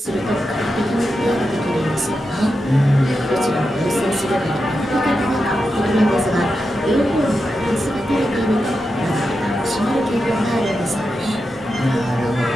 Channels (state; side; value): normal; both; correlation 0.88